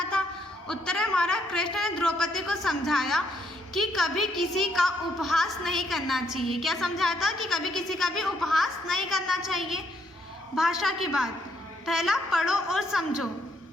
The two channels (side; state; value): both; normal; correlation 0.73